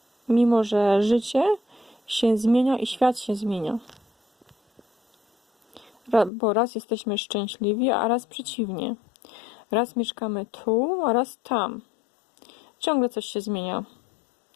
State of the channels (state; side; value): drops out; right; at 6.3 s